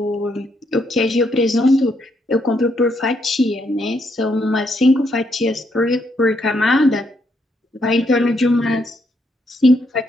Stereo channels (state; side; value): normal; both; correlation 0.76